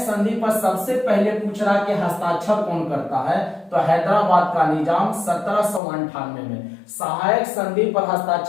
पर सबसे पहले पूछ रहा कि हस्ताक्षर कौन करता है, तो हैदराबाद का निजाम 1798 में। सहायक संधि पर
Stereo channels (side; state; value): right; drops out; at 5.8 s